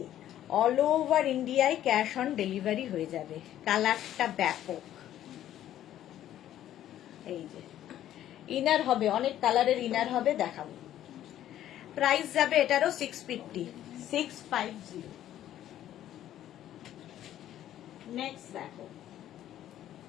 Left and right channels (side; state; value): right; quieter; 12.0 dB